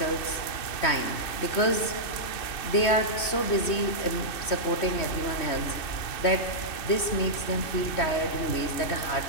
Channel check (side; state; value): right; late; 3.2 ms